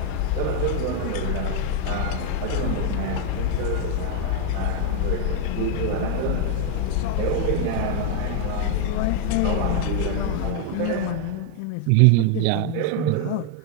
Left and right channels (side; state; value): both; different; correlation 0.00